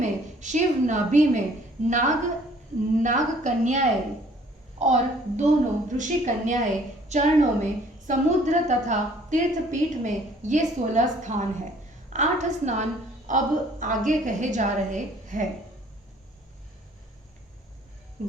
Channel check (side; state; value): both; normal; correlation 0.57